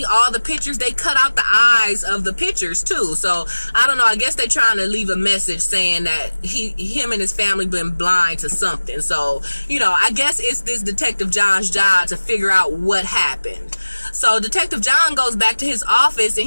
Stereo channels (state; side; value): inverted; both; correlation -1.00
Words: all the pictures, they cut out the eyes of the pictures too. So I don't know, I guess they're trying to leave a message saying that him and his family been blind to something. So, you know, I guess it's this Detective John's job to figure out what happened. So Detective John goes back to his office, and